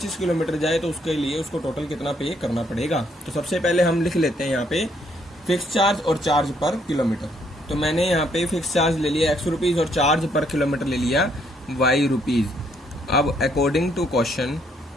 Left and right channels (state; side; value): normal; both; correlation 0.70